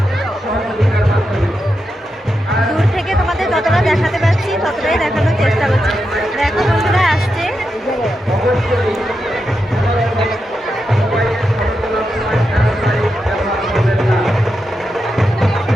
দূর থেকে তোমাদের যতটা দেখাতে পারছি ততটাই দেখানোর চেষ্টা করছি। দেখো বন্ধুরা আসছে।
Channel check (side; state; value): both; normal; correlation 0.87